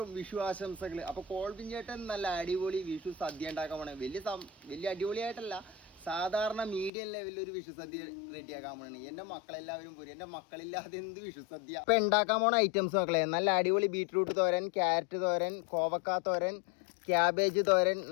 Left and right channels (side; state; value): right; drops out; at 6.9 s